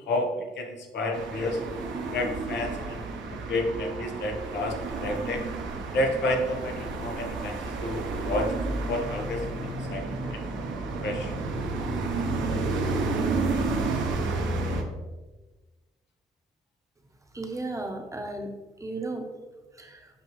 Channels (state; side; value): normal; both; correlation 0.54